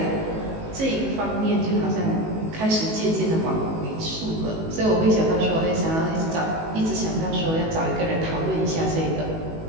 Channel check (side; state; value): left; late; 19 ms